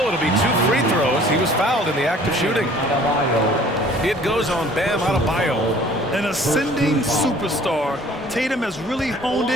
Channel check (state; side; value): normal; both; correlation 0.52